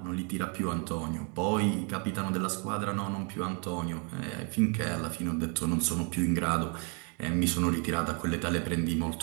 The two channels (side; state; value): left; quieter; 37.0 dB